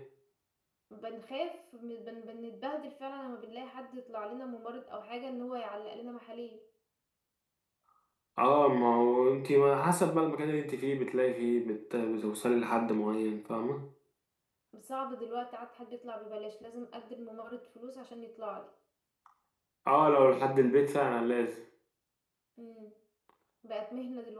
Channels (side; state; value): both; identical; correlation 1.00